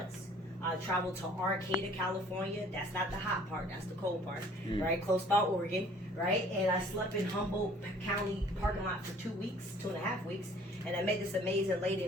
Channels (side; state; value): both; normal; correlation 0.54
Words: I traveled to Arcata, California. That's not the hot part, that's the cold part, right? Close by Oregon, right? And I slept in Humboldt County parking lot for 2 weeks, 2.5 weeks. And I met this amazing lady